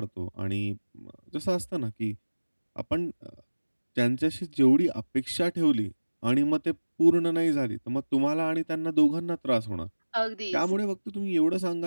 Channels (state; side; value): inverted; both; correlation -1.00